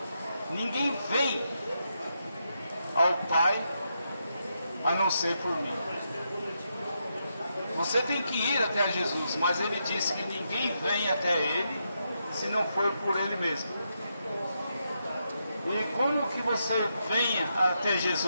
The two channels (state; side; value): inverted; both; correlation -0.83